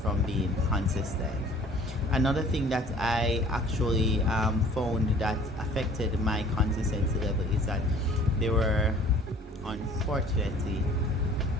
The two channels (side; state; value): both; normal; correlation 0.51